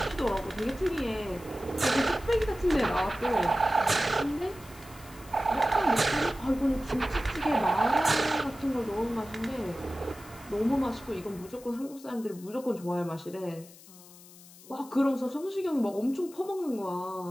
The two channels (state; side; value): noise; left; hiss, 21 dB below the sound